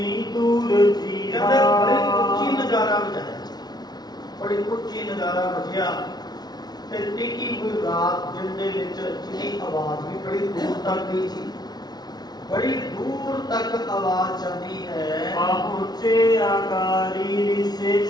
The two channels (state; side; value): late; right; 0.19 ms